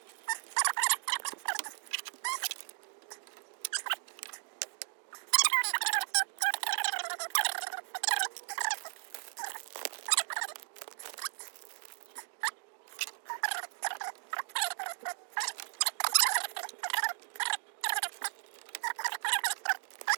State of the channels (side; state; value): left; silent; digital silence